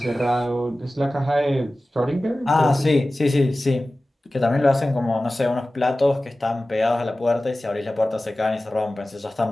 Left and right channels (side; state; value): both; normal; correlation 0.96